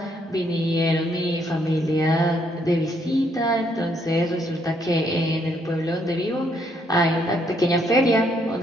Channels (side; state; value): both; normal; correlation 0.72